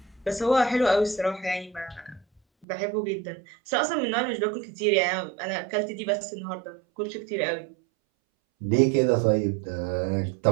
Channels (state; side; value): drops out; left; at 2.7 s